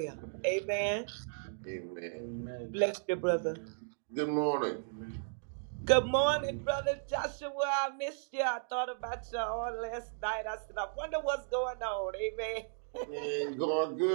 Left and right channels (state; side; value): silent; left; digital silence